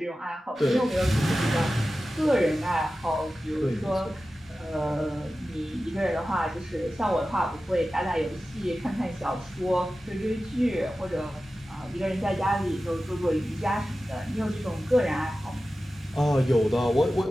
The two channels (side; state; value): both; normal; correlation 0.94